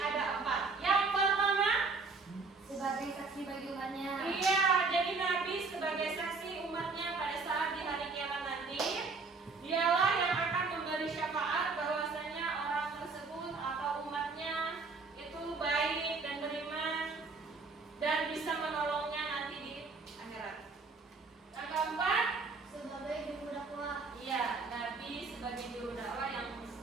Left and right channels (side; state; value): left; quieter; 4.2 dB